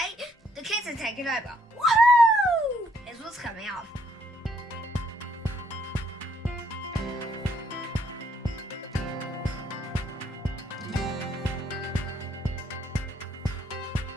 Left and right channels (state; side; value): normal; both; correlation 0.69